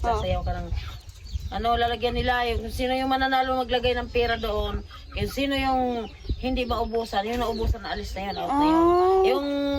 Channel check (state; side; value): identical; both; correlation 1.00